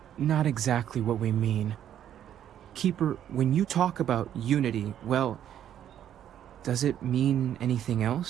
not exactly what we mean. Keeper, when you talk about unity, well, does it mean anything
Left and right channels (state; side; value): quieter; left; 10.4 dB